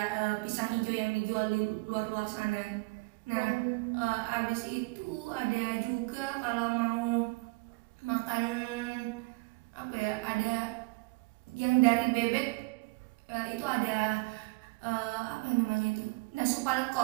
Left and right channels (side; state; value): left; quieter; 25.6 dB